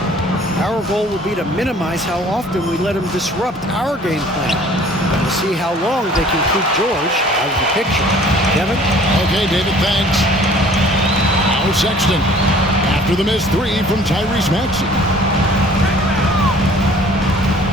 Our goal will be to minimize how often we let him disrupt our game plan. We'll see how long they can keep George out of the picture. Kevin? Okay, David, thanks. Now Sexton after the missed 3 from Tyrese Maxey.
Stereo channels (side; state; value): both; normal; correlation 0.52